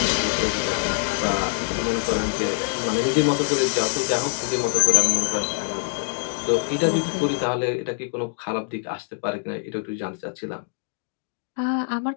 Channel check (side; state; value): right; silent; digital silence